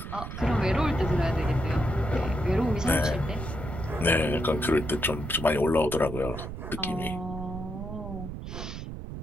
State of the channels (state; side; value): noise; right; rumble, 8 dB below the sound